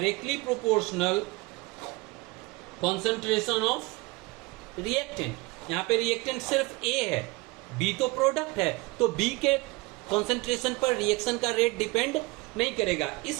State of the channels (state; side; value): quieter; left; 24.2 dB